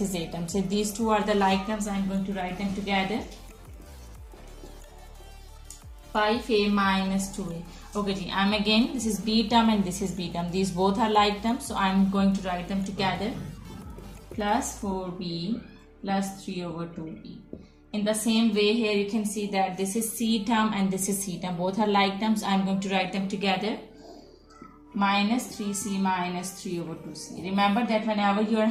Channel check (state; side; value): identical; both; correlation 1.00